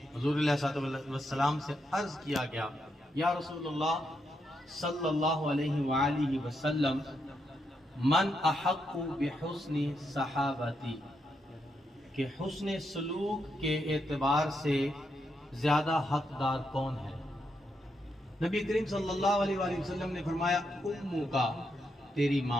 حضور علیہ السلام سے عرض کیا گیا، یا رسول اللہ صلی اللہ علیہ وآلہ وسلم، من احق بحسن صحابتی، کہ حسن سلوک کے اعتبار سے زیادہ حقدار کون ہے؟ نبی کریم صلی اللہ علیہ وآلہ وسلم نے فرمایا، امو کا، تیری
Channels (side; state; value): both; normal; correlation 0.81